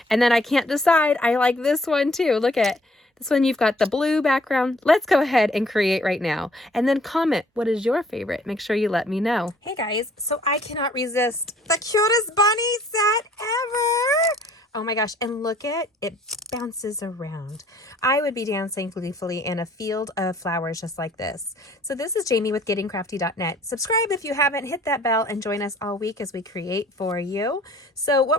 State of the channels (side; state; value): both; normal; correlation 0.59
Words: And then I can't decide. I like this one too. Look at this one. You've got the blue background. Let's go ahead and create right now. And then comment, what is your favorite? Make sure you let me know. Hey guys, so I cannot resist the cutest bunny set ever. Oh my gosh, and look at it, bounces around. I would be dancing gleefully in a field of flowers just like this. So this is Jamie with GettingCrafty.net. Subscribe if you haven't, hit that bell, and join us all week as we create for you. So